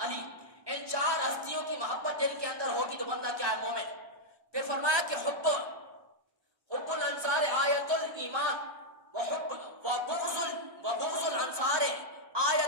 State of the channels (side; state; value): left; late; 1.2 ms